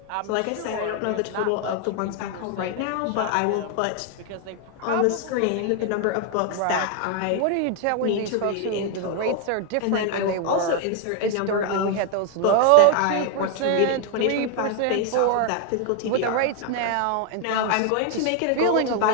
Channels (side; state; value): both; different; correlation 0.01